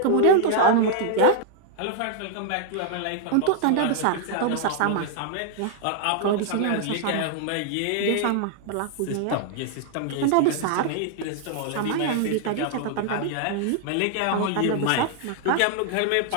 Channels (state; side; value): different; both; correlation 0.00